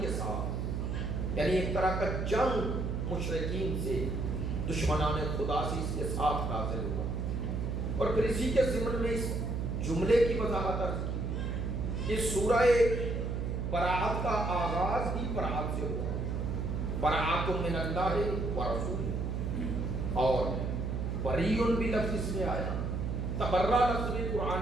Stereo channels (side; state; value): right; noise; hum, 1 dB below the sound